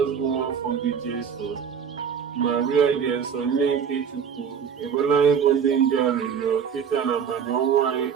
bụ nwaafọ gị Jesu. Maria dị eso nne nke Chukwu, ekwela ịbụ ndị nje arịrịọ kịta na mmanya ọnwụ anyị.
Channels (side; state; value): left; quieter; 7.3 dB